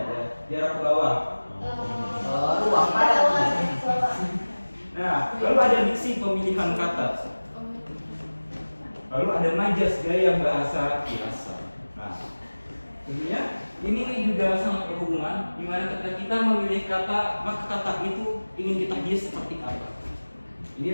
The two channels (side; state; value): both; inverted; correlation -1.00